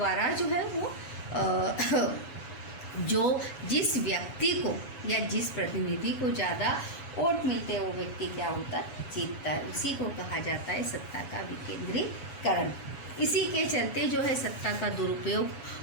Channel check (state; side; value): late; right; 7.1 ms